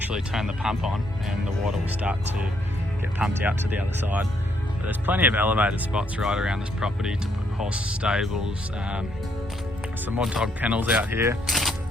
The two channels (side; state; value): both; normal; correlation 0.73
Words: turn the pump on and the water will start to get pumped out to the other side. But there's plenty of elevated spots right around this property to put horse stables, some more dog kennels out here,